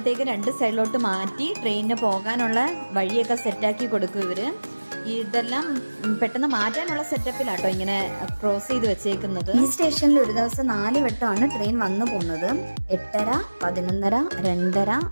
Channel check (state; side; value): inverted; both; correlation -1.00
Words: രണ്ട് സൈഡിലോട്ട് മാറ്റി ട്രെയിനിന് പോകാനുള്ള വഴിയൊക്കെ സെറ്റാക്കി കൊടുക്കും ഇവർ. ഇതെല്ലാം പെട്ടെന്ന് മാറ്റാനുള്ള സെറ്റപ്പിലാട്ടോ ഇങ്ങനെ ക്രോസ് ചെയ്ത് വെച്ചേക്കുന്നത്. ഈ സ്റ്റേഷനിൽ ഒരു ദിവസം 4 വട്ടമാണ് ട്രെയിൻ വന്നു പോകുന്നത്. 8:30, 11:30, 2:30,